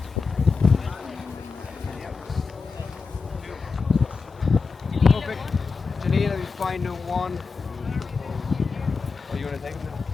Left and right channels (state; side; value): quieter; right; 4.8 dB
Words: Perfect. Janina, we find one. Are you going to take it?